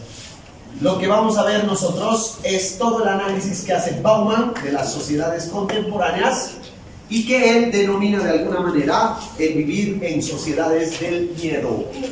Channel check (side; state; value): both; identical; correlation 1.00